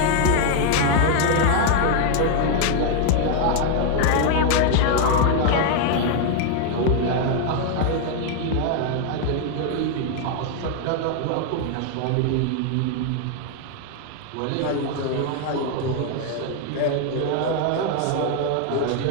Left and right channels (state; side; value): different; both; correlation 0.00